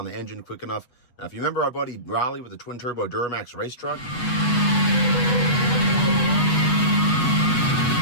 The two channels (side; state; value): right; late; 8.1 ms